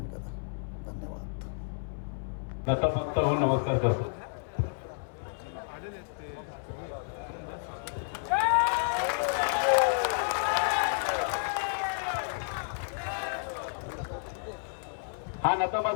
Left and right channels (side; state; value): right; silent; 57 dB below the other